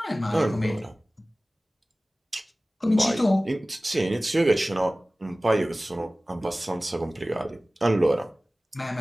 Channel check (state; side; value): normal; both; correlation 0.98